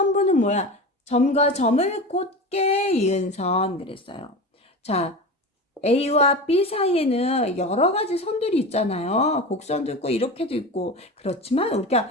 뭐야? 점과 점을 곧게 이은 선 그랬어요. 자, A와 B 사이에는 여러 가지 선들이 있잖아요. 곡선도 있고 이렇게도 있고. 그렇지만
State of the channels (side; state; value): both; normal; correlation 0.28